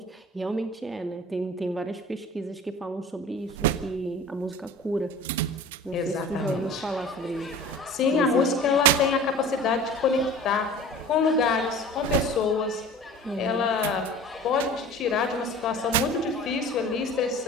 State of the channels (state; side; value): normal; both; correlation 0.40